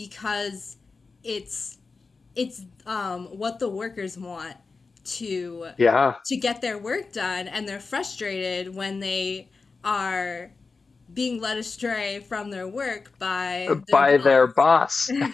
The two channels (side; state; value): right; quieter; 4.3 dB